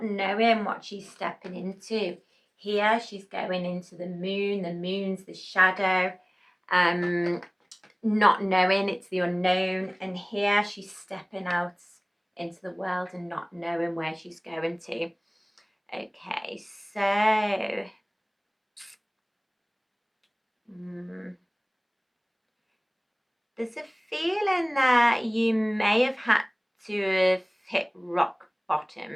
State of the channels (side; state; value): both; identical; correlation 1.00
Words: knowing what she's stepping into. Here she's going into the moon's the shadow, not knowing, it's the unknown, and here she's stepping out into the world and not knowing where she's going to. Okay, so there's a feeling that you may have had to have hit rock